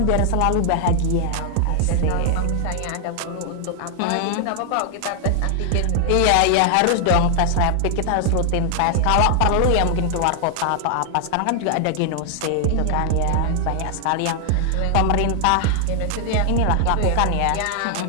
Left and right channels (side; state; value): both; different; correlation 0.00